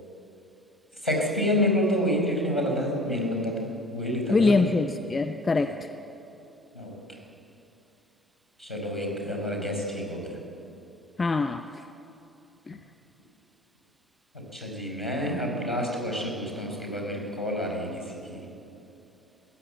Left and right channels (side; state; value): both; normal; correlation 0.46